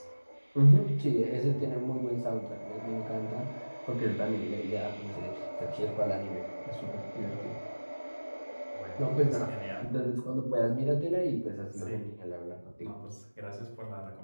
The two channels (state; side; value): inverted; both; correlation -1.00